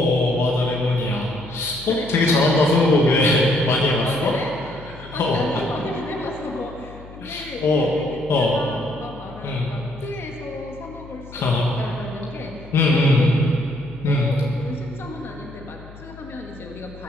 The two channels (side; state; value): left; noise; hum, 18 dB below the sound